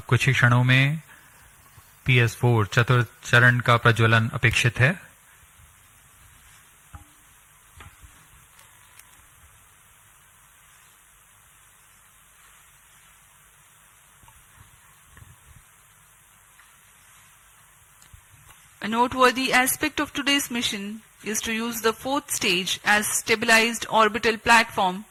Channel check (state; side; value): identical; both; correlation 1.00